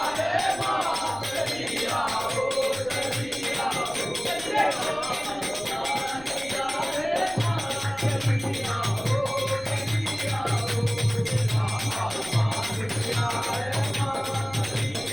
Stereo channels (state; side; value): noise; left; rumble, 20 dB below the sound